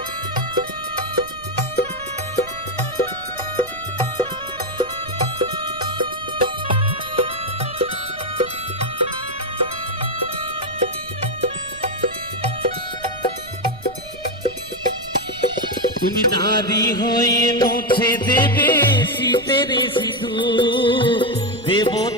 তুমি দাবি হয়ে মুছে দেবে শীতের সিঁদুর,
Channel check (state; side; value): noise; right; rumble, 19 dB below the sound